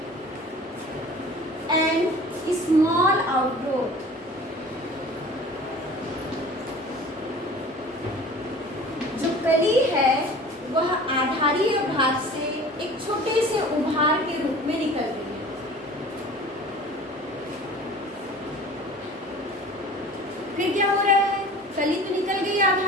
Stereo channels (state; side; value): normal; both; correlation 0.43